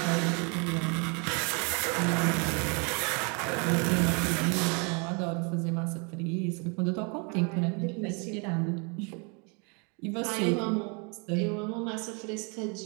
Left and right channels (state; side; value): quieter; left; 33.5 dB